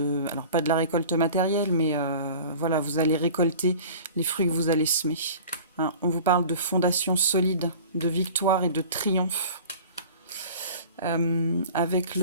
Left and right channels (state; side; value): inverted; both; correlation -0.42